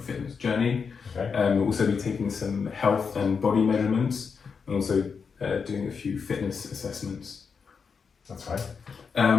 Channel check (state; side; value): quieter; right; 5.8 dB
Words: fitness journey. Okay. We'll also be taking some health and body measurements, and also doing a few fitness assessments. That's